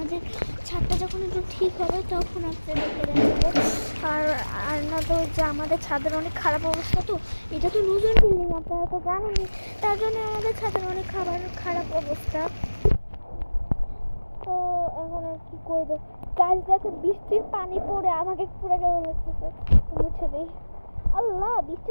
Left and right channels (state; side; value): inverted; both; correlation -1.00